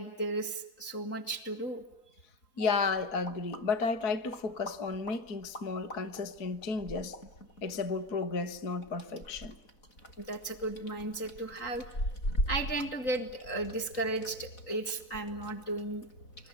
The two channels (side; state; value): right; late; 3.8 ms